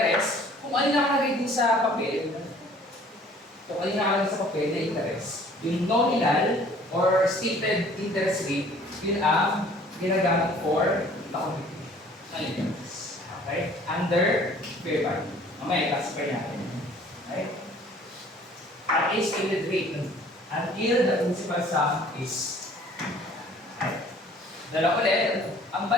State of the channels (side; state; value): both; normal; correlation 0.53